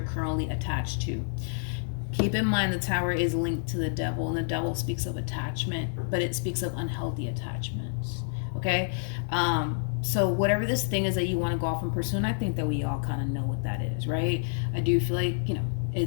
currently attached to. Keep in mind the Tower is linked to the Devil, and the Devil speaks of attachment, but it speaks of unhealthy attachments. Okay? So whatever this thing is that you want to go off and pursue, and I think that we all kind of know what that is, right? I do feel like,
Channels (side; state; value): right; silent; digital silence